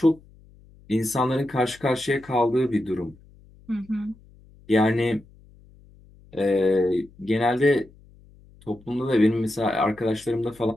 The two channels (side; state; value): left; noise; hum, 26 dB below the sound